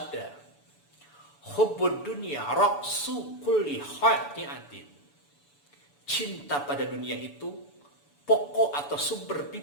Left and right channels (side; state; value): right; late; 7.0 ms